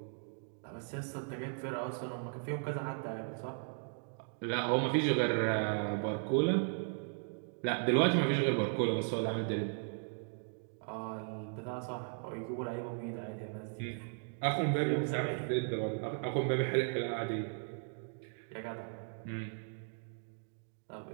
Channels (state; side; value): silent; left; 53 dB below the other